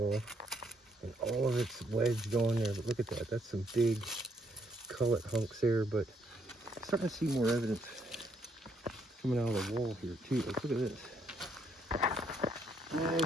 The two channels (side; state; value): both; normal; correlation 0.72